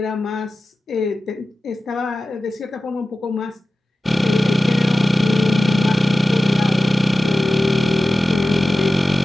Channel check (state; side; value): normal; both; correlation 0.95